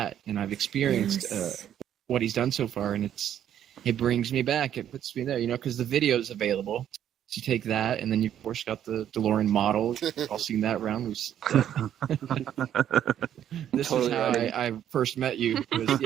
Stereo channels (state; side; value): quieter; left; 10.3 dB